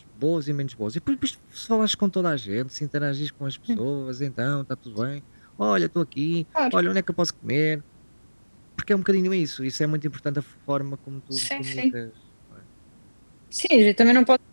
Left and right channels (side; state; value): both; inverted; correlation -1.00